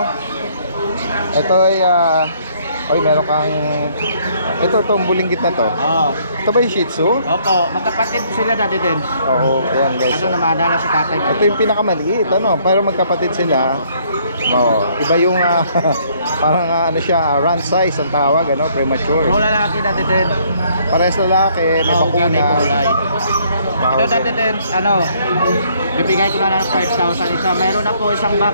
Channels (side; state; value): both; inverted; correlation -0.65